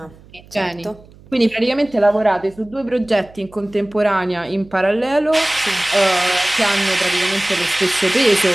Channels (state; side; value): noise; right; hum, 24 dB below the sound